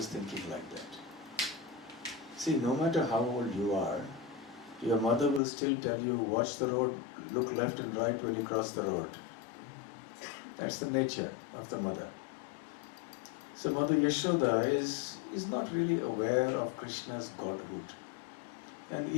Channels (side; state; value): right; drops out; at 5.4 s